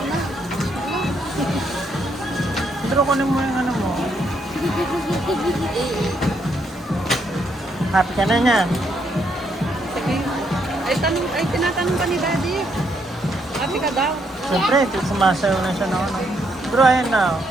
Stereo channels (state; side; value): normal; both; correlation 0.75